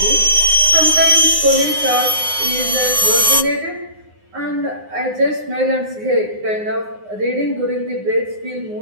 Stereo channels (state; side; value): late; left; 9.7 ms